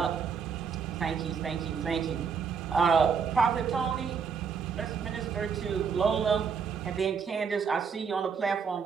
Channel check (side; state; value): left; quieter; 6.2 dB